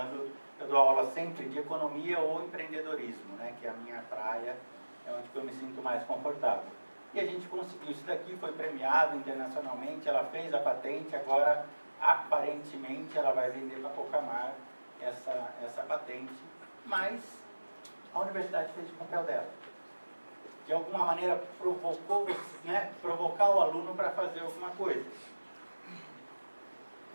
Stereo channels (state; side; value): inverted; both; correlation -1.00